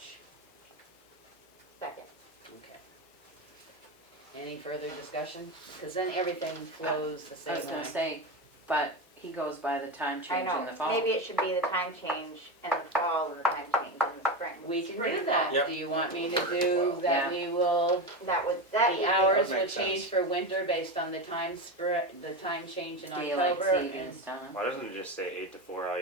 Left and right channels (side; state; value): both; normal; correlation 0.18